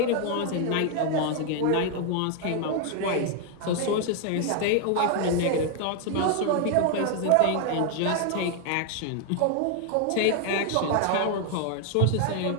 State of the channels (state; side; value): different; both; correlation 0.00